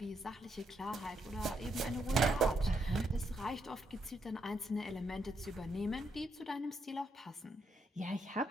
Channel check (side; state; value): both; normal; correlation 0.78